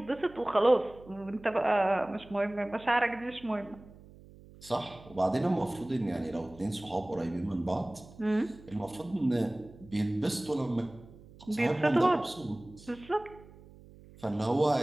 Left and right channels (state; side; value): noise; right; hum, 21 dB below the sound